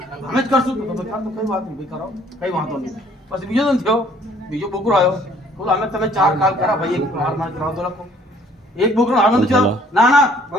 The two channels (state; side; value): normal; both; correlation 0.59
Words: हम જ કરશું તો કઈ વાત નહીં ભાઈ કરો કઈ વાંધો નહીં પછી બીજો દિન થયો બીજો બોકરો આવ્યો બોલો અમે તમે 4 કાલ કરા ભાઈ એક હાર માર કરાવ તો લખો એક બોકરો હાર ન ચાલો ના